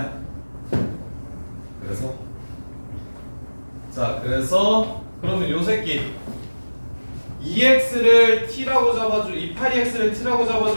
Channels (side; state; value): both; inverted; correlation -1.00